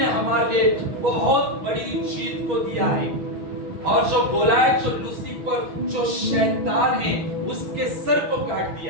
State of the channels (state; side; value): late; left; 6.2 ms